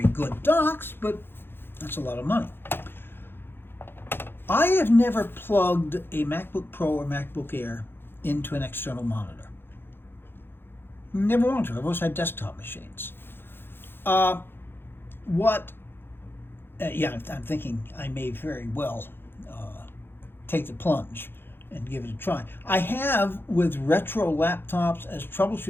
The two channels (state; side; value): late; right; 0.10 ms